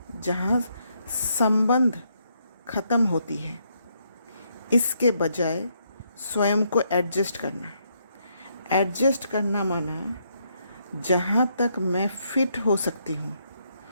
जहाँ संबंध खत्म होती है। इसके बजाय स्वयं को एडजस्ट करना। एडजस्ट करना माना जहाँ तक मैं फिट हो सकती हूँ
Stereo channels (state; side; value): inverted; both; correlation -0.75